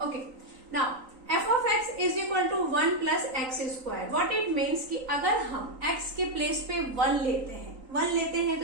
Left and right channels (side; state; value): left; late; 3.9 ms